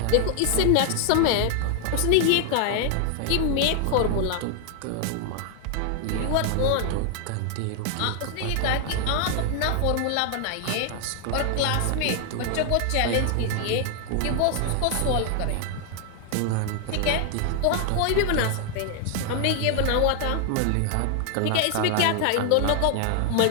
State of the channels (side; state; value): both; different; correlation 0.00